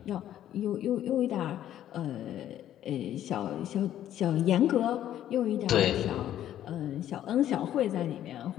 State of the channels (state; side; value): quieter; right; 11.7 dB